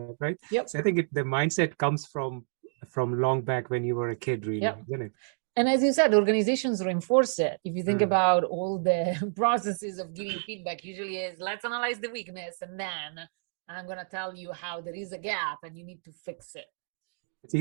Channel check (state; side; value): silent; left; digital silence